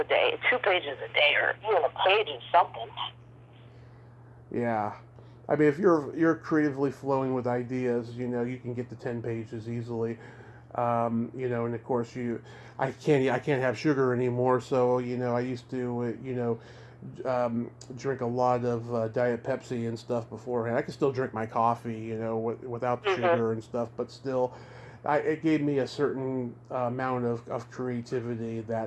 day, 2 pages a day, or even a page of something. Yeah. I mean, if you're creatively flowing with ideas, you can get to 10 pages easily. And of course I can't have sugar anymore. So, I used to, drink a lot of Diet Pepsi and stuff beforehand. I can still drink my coffee, without the sugar and stuff, but still, it gave me a certain amount of creativity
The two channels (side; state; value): both; identical; correlation 1.00